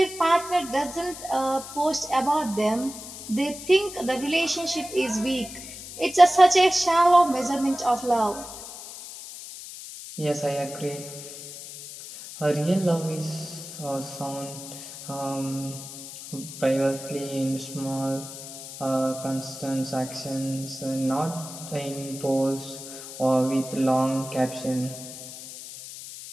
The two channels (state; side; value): noise; left; hiss, 12 dB below the sound